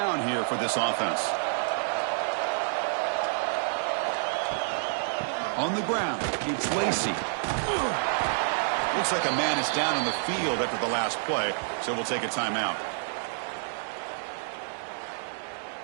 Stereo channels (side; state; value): left; silent; digital silence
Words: here for this offense. On the ground, it's Lacey. Looks like a man is down on the field after the last play, so we'll take a timeout.